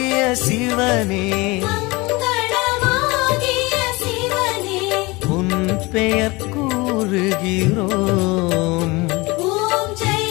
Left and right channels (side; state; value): right; quieter; 23.8 dB